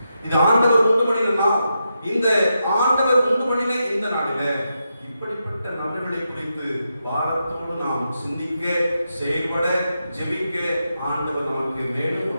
இந்த ஆண்டவர் உண்டு பண்ணின இந்த நாளில இப்படிப்பட்ட நபர்களை குறித்து பாரத்தோடு நாம் சிந்திக்க, செயல்பட, ஜெபிக்க ஆண்டவர் நமக்கு மேலும்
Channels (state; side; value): inverted; both; correlation -0.86